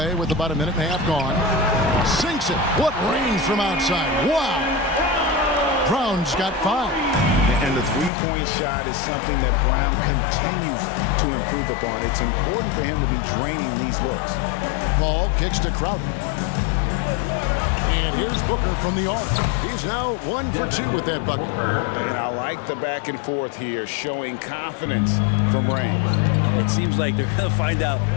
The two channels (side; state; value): right; drops out; at 8.1 s